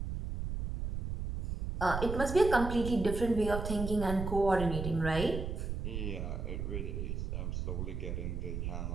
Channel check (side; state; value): right; noise; rumble, 4 dB below the sound